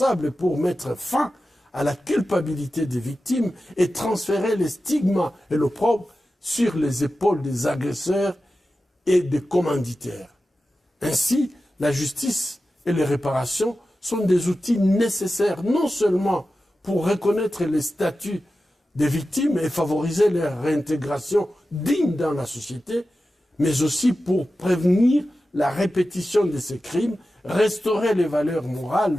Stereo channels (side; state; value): both; normal; correlation 0.93